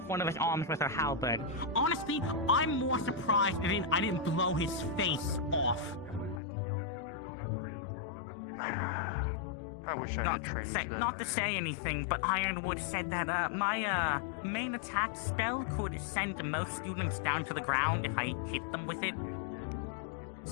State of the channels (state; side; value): drops out; right; at 6.4 s